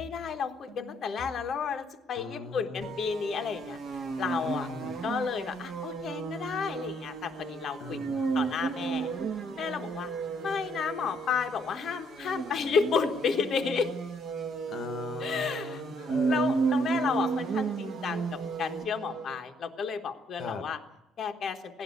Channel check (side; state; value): both; normal; correlation 0.68